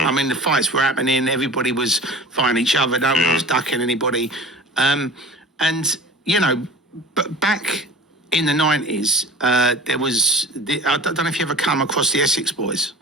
mean, the fights were happening, everybody was fighting each other, no one was ducking anybody. And, you know, but back in the 90s, there was, I don't know if you ever come across the Essex boys.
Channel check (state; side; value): normal; both; correlation 0.40